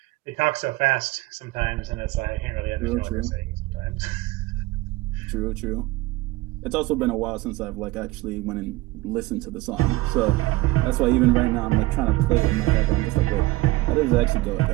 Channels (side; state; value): left; quieter; 19.4 dB